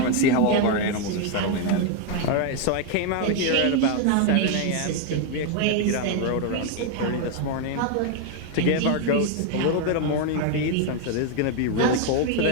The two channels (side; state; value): both; different; correlation 0.01